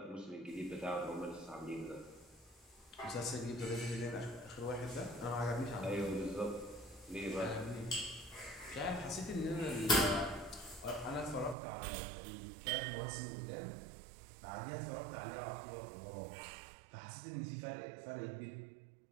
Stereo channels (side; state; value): left; drops out; at 11.6 s